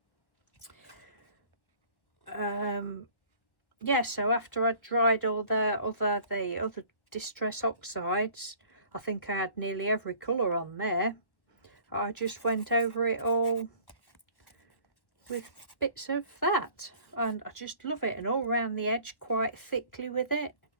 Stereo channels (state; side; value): late; right; 1.2 ms